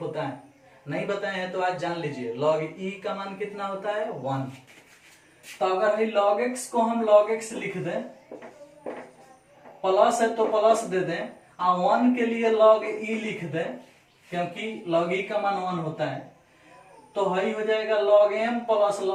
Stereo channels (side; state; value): both; identical; correlation 1.00